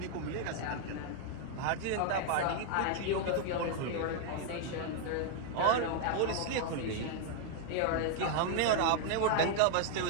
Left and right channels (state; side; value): different; both; correlation 0.00